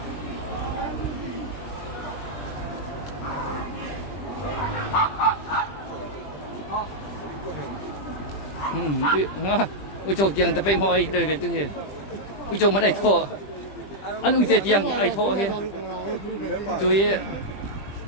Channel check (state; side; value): late; right; 20 ms